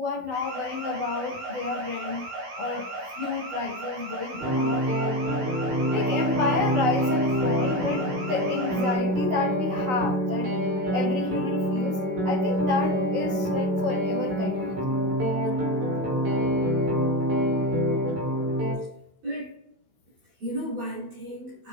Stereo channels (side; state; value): left; late; 16 ms